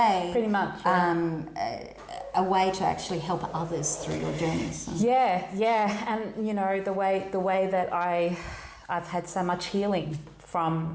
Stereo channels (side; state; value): both; identical; correlation 1.00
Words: Pretty much. A way to actually help others through your journeys. Yeah. And, you know, the way that I've had so much healing